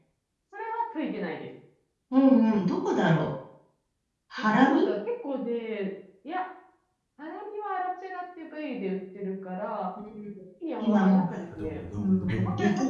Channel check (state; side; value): identical; both; correlation 1.00